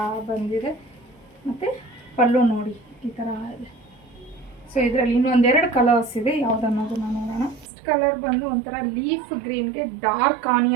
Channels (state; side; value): drops out; left; at 7.7 s